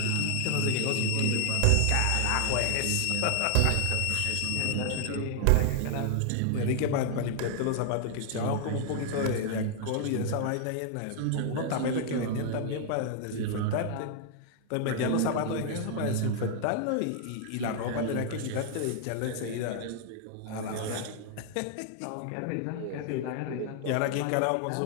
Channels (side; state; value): both; different; correlation 0.00